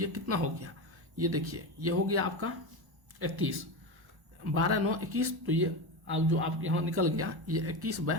कितना हो गया, ये देखिए ये हो गया आपका 21, 12 9 21, तो ये अब जो आप यहाँ निकल गया ये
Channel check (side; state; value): left; late; 1.1 ms